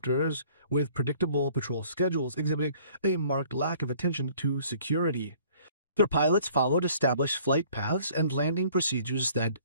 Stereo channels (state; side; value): inverted; both; correlation -0.55